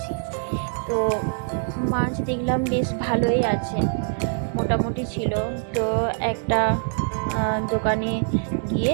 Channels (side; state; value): left; silent; digital silence